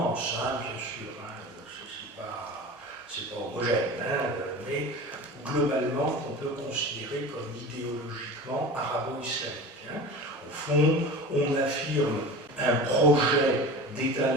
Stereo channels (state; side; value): normal; both; correlation 0.34